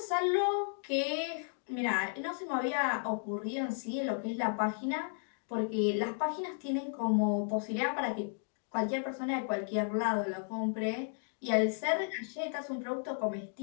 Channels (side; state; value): right; silent; digital silence